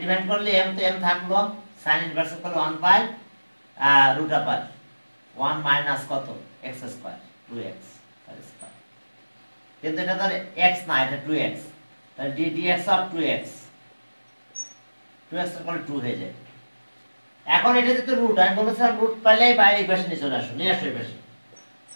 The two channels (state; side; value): inverted; both; correlation -1.00